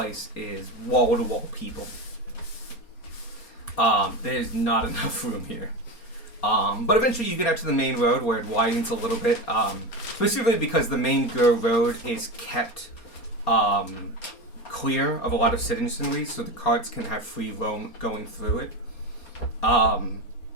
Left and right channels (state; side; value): late; right; 4.3 ms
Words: is wall to wall people. There's not enough room here. But eventually you get out to the main road where it widens a little bit. Specifically because the main road is kept clear of a lot of citizenry, so the carts can have free roam going through it.